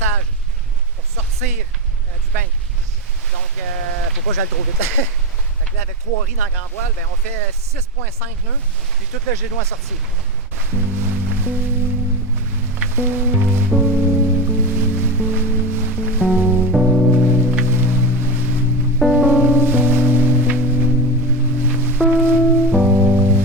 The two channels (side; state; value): both; normal; correlation 0.19